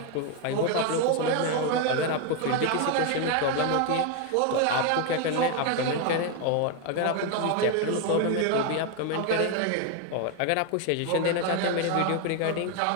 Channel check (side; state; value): both; different; correlation 0.01